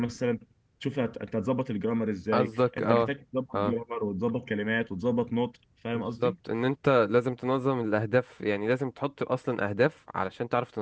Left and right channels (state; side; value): identical; both; correlation 1.00